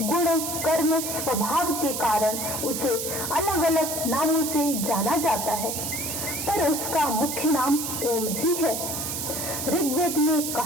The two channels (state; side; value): noise; right; hiss, 3 dB below the sound